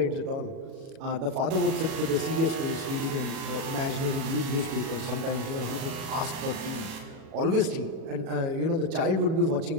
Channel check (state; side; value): late; left; 37 ms